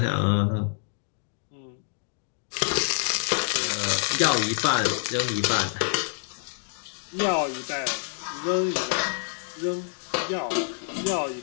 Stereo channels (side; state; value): right; silent; digital silence